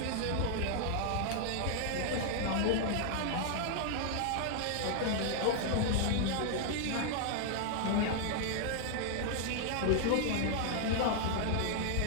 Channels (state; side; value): different; both; correlation 0.00